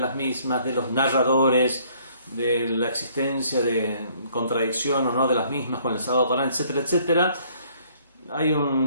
mismas, de los narradores, de la existencia de contradicción o no de las mismas con el Sagrado Corán, etcétera, etcétera. Hay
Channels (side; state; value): both; inverted; correlation -0.62